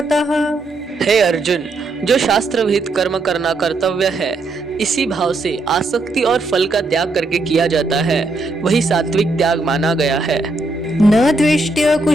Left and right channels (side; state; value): left; quieter; 3.1 dB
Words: हे अर्जुन, जो शास्त्र विहित कर्म करना कर्तव्य है, इसी भाव से आसक्ति और फल का त्याग करके किया जाता है, वही सात्विक त्याग माना गया है। न द्वेष्ट्य